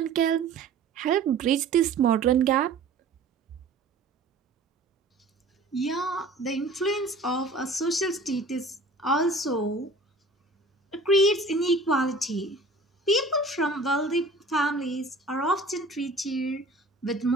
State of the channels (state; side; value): quieter; left; 3.1 dB